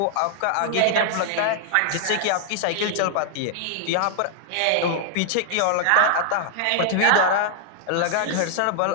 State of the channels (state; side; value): different; both; correlation -0.01